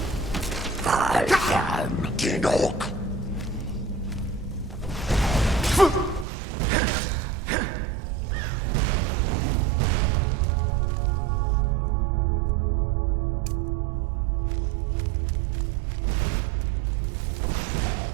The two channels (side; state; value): left; drops out; at 6.2 s